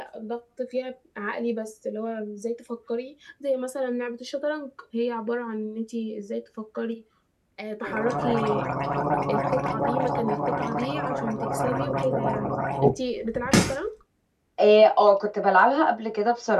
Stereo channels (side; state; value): both; identical; correlation 1.00